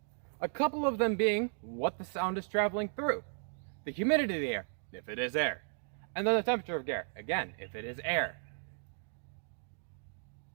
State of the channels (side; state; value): left; silent; 54 dB below the other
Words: A couple of them being what the sound is traveling through, the humidity of the air, if it is air, and then the temperature of air, again, if it is air.